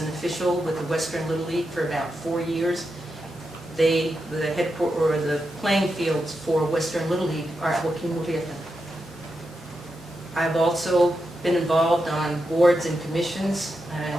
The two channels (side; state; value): both; normal; correlation 0.87